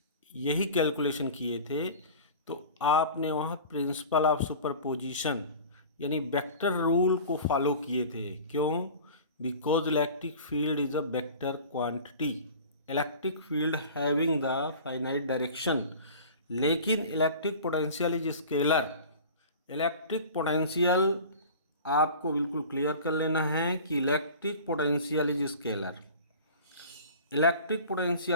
यही कैलकुलेशन किए थे तो आपने वहाँ प्रिंसिपल ऑफ सुपरपोजिशन यानी वेक्टर रूल को फॉलो किए थे। क्यों? Because electric field is a vector quantity, electric field having the finite direction, लेकिन electric potential is scalar. Electric potential आपको बिल्कुल क्लियर कर लेना है कि electric potential is scalar, electric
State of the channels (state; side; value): inverted; both; correlation -0.39